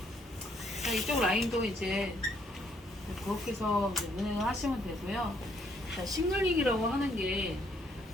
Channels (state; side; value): normal; both; correlation 0.69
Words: 자, 이쪽 라인도 이제 그렇게 해서 운행을 하시면 되고요. 자, 싱글링이라고 하는 게